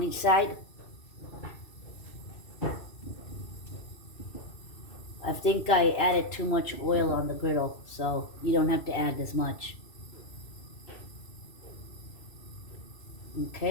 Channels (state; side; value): late; right; 2.6 ms